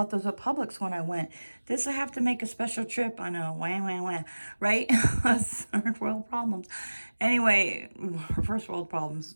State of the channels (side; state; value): both; inverted; correlation -1.00